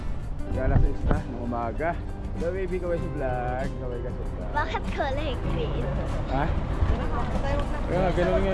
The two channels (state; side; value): identical; both; correlation 1.00